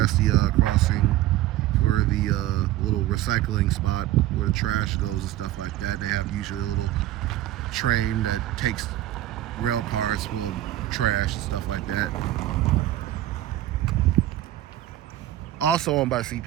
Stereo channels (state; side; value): quieter; left; 14.3 dB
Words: the crossing for the little recycling spot where the trash goes and stuff like that. They have usually a little train that takes rail cars full of trash and stuff like that. Also owned by